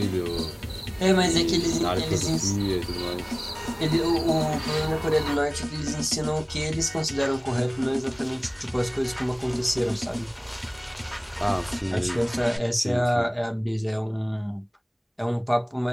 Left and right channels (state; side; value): identical; both; correlation 1.00